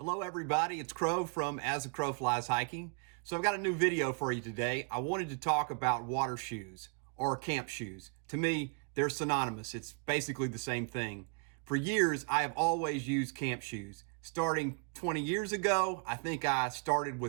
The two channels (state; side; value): quieter; left; 37.7 dB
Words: everybody, it's Crow from As the Crow Flies Hiking. So I've got a new video for you today. I wanted to talk about water shoes or camp shoes. To me, they're synonymous. It's basically the same thing. For years, I have always used camp shoes. Starting 20 years ago, I think I started